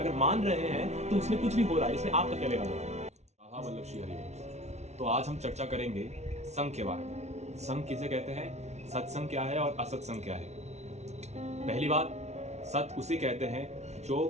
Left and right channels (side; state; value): left; late; 0.32 ms